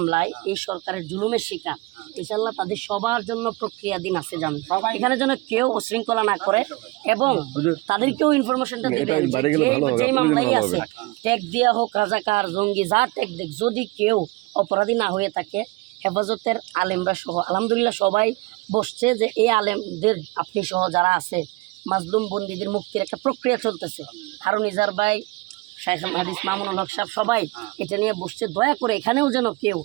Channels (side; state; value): left; quieter; 23.1 dB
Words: এই সরকারের জুলুমের শিকার, ইনশাল্লাহ তাদের সবার জন্য প্রক্রিয়াধীন আছে জামিন। এখানে যেন কেউ উশৃঙ্খলা না করে এবং তাদেরকেও ইনফরমেশনটা দিবেন যে মামলাই আছে ট্যাগ দেওয়া হোক, রাজাকার জঙ্গি যা ট্যাগ দেখ, যদি কেউ অপরাধী না হয়ে থাকে হেফাজতের আলেমরা সহ আলহামদুলিল্লাহ সবাই বসছে যে এই আলেমদের আপনি সহ যারা আছে মাজলুম বন্দীদের মুক্তির একটা প্রক্রিয়া চলতেছে। হারুন ইজার ভাই, শাইখ হাদিস মামুনুল হক সাহেব সবাই এটা নিয়ে বসছে। দয়া করে এখানেও যেন কেউ